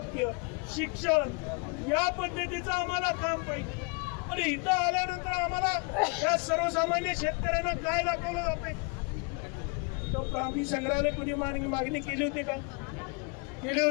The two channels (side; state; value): right; quieter; 32.4 dB